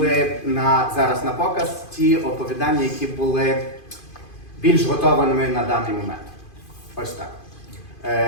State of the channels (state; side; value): late; right; 2.5 ms